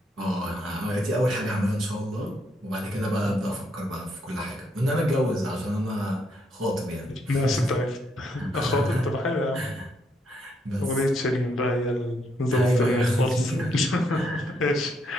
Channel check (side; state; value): both; normal; correlation 0.75